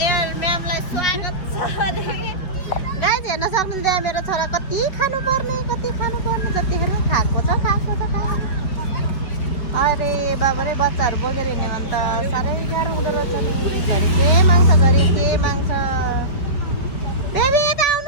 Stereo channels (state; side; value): late; right; 5.4 ms